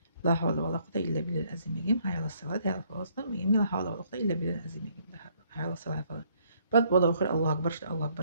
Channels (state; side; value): inverted; both; correlation -0.67